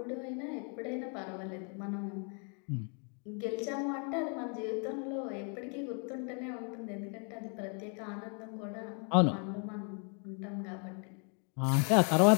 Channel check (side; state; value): right; quieter; 39.3 dB